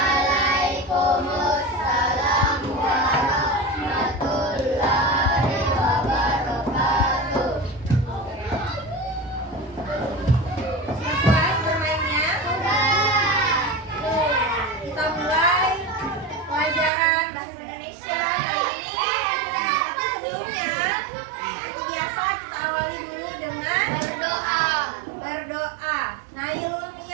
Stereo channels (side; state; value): left; drops out; at 16.9 s